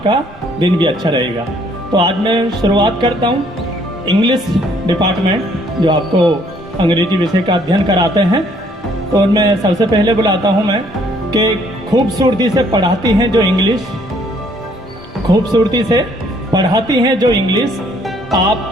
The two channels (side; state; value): both; normal; correlation 0.64